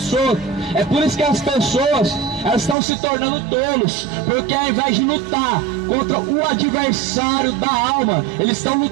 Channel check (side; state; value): left; drops out; at 2.8 s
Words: É por isso que as pessoas, elas estão se tornando tolos, porque ao invés de lutar contra o adversário da alma, eles estão